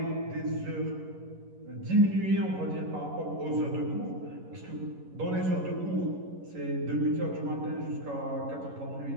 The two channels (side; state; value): left; late; 11 ms